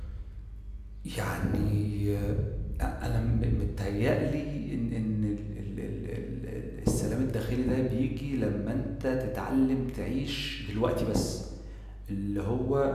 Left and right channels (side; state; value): both; identical; correlation 1.00